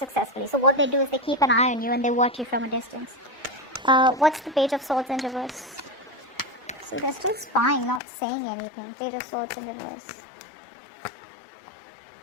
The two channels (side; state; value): right; drops out; at 8.0 s